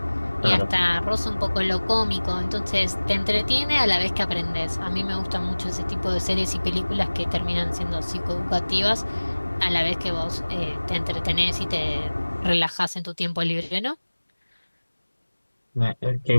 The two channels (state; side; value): inverted; both; correlation -1.00